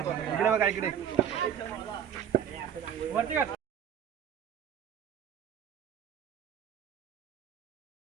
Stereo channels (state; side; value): quieter; left; 8.9 dB